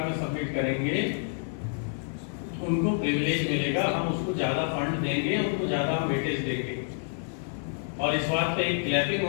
में सबमिट करेंगे, उनको प्रिविलेज मिलेगा, हम उसको ज्यादा फंड देंगे, उनको ज्यादा वेटेज देंगे। और इस बात पे एक क्लैपिंग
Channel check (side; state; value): right; silent; digital silence